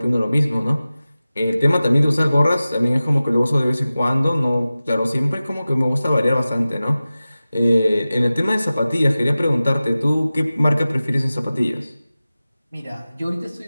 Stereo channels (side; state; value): both; inverted; correlation -0.96